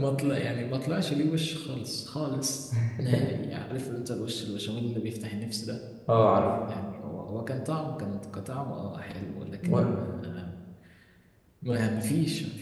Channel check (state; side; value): identical; both; correlation 1.00